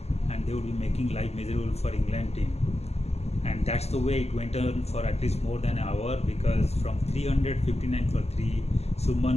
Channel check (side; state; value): right; late; 0.31 ms